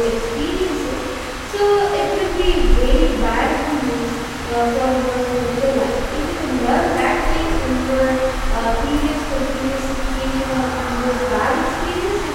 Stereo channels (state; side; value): identical; both; correlation 1.00